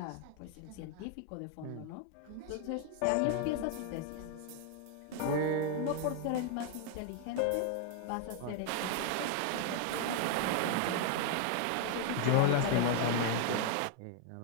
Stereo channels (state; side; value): different; both; correlation 0.00